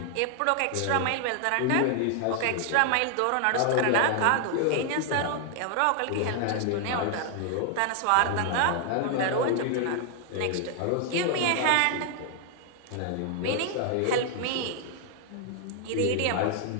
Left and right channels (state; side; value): different; both; correlation 0.00